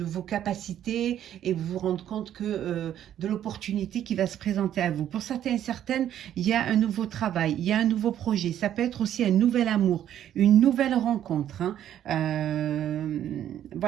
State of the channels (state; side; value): quieter; left; 10.9 dB